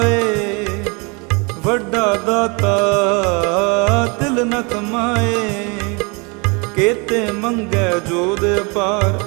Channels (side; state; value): left; quieter; 30.4 dB